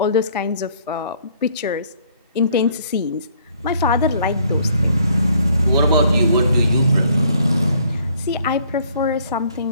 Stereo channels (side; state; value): both; inverted; correlation -0.62